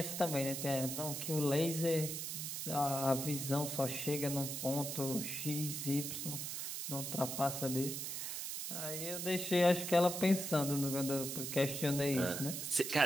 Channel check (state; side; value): noise; right; hiss, 4 dB below the sound